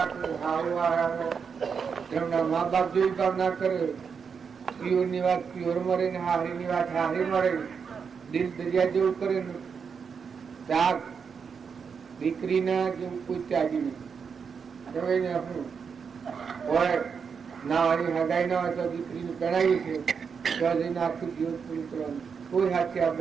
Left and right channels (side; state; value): left; quieter; 6.2 dB